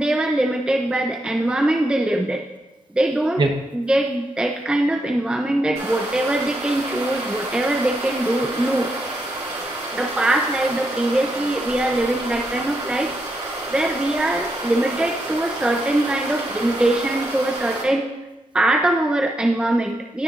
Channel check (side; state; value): both; normal; correlation 0.82